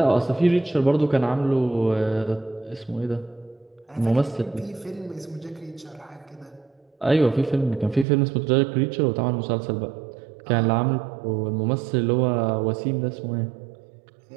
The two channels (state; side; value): drops out; left; at 8.1 s